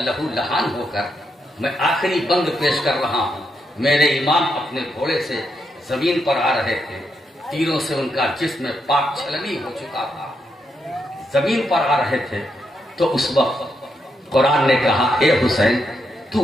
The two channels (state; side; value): normal; both; correlation 0.81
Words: لہو لہان ہو کر میں آخری بند پیش کر رہا ہوں، میرے امام اپنے گھوڑے سے زمین پر آ رہے تھے، تیروں سے ان کا جسم پاک چھلنی ہو چکا تھا، زمین پر آ رہے تھے، تو اس وقت قرآن نے کہا اے حسین تو